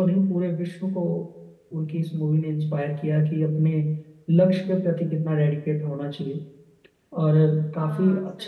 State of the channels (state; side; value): identical; both; correlation 1.00